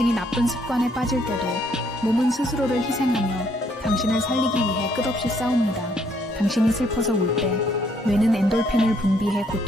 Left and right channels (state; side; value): normal; both; correlation 0.69